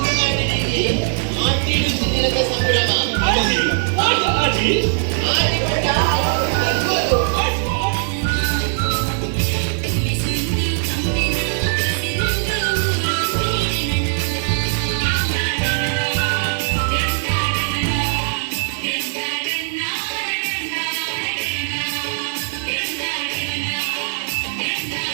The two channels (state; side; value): silent; left; digital silence